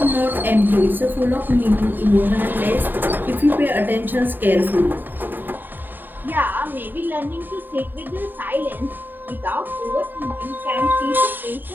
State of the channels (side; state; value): left; late; 0.091 ms